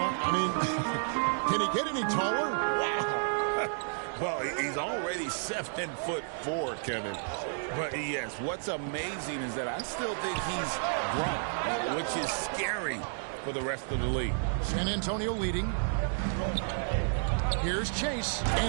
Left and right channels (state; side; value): silent; left; digital silence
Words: I mean, can he get any taller? Wow. Well, he's already 7'4", Kevin. But yes, what's amazing is that I still think he's grown, which is scary for the rest of the league. San Antonio leading. Here's Chase,